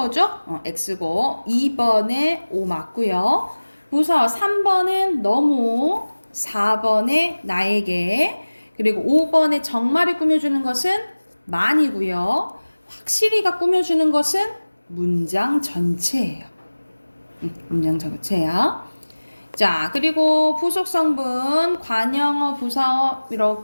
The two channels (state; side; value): inverted; both; correlation -1.00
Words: X고 2번에 O 맞고요. 부사 3번은 너무, 4번에 나에게, 그리고 5번에 정말을 꾸며주는 것은 많이고요. 확실히가 꾸며주는 것은 문장 전체예요. 문장 전체야. 자, 그리고 부속 성분, 관형어, 부사어